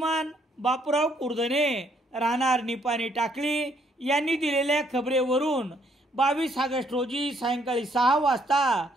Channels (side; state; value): both; normal; correlation 0.69